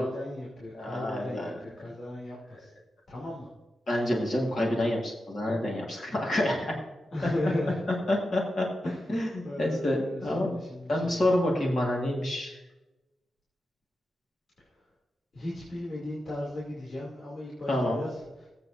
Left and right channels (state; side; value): normal; both; correlation 0.90